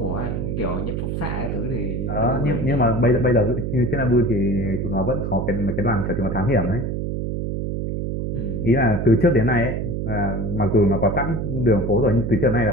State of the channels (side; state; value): right; noise; hum, 2 dB below the sound